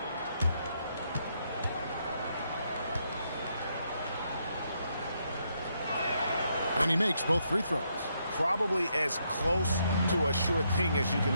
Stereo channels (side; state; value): both; inverted; correlation -0.76